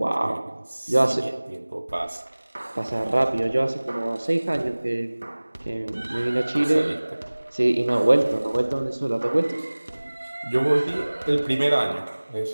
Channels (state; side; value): inverted; both; correlation -1.00